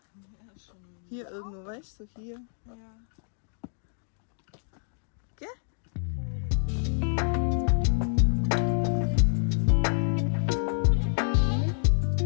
Ja, schon. Hier irgendwo, weißt du, hier. Ja.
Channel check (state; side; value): silent; right; digital silence